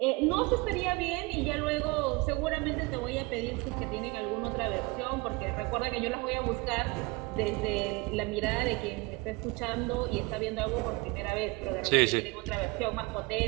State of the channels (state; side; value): quieter; left; 24.9 dB